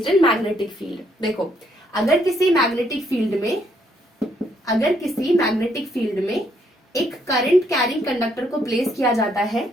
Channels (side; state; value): both; normal; correlation 0.71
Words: in magnetic field. देखो, अगर किसी मैग्नेटिक फील्ड में एक करंट कैरिंग कंडक्टर को प्लेस किया जाता है